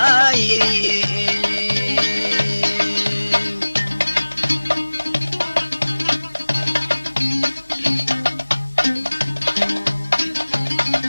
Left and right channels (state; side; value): inverted; both; correlation -1.00